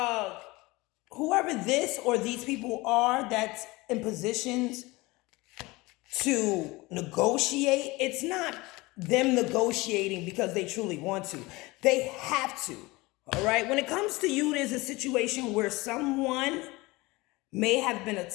whoever this or these people are that's in positions to negotiate, it's not them negotiating because they truly want to. They have to. All right. When it comes to you, there's a situation where someone may have been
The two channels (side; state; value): right; quieter; 22.3 dB